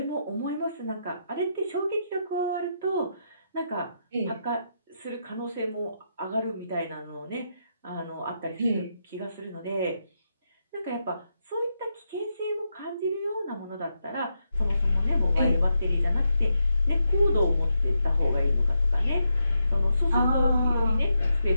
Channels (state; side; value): inverted; both; correlation -0.83